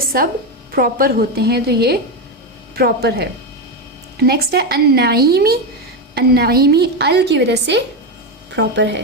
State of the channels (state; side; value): normal; both; correlation 0.11